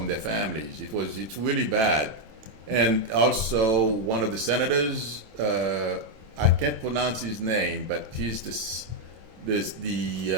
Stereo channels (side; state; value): left; late; 27 ms